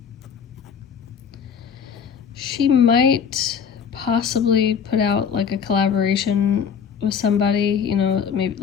She might possibly put out like a collaboration with somebody, maybe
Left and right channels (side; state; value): right; quieter; 7.1 dB